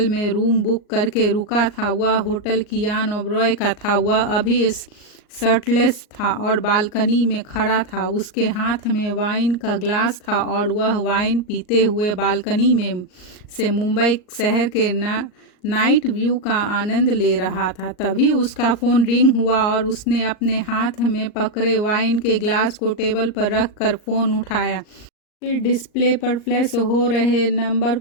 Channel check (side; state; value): right; late; 38 ms